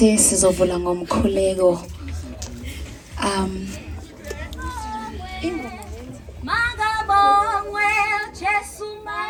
sizovula ngomkhuleko. Magabongwe Jesu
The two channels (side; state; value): both; identical; correlation 1.00